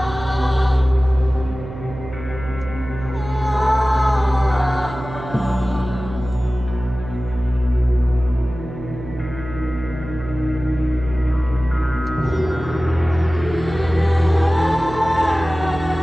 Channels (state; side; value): noise; right; hum, 12 dB below the sound